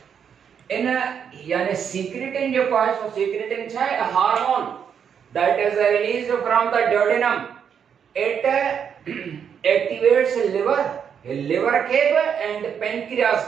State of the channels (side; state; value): left; quieter; 7.6 dB